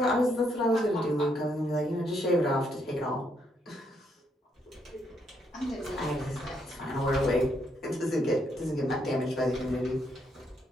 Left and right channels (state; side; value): normal; both; correlation 0.75